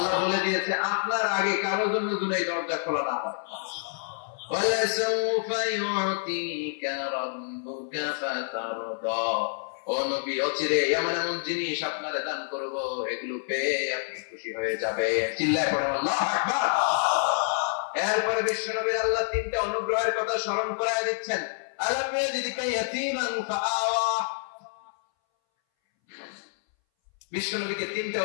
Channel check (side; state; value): right; silent; 60 dB below the other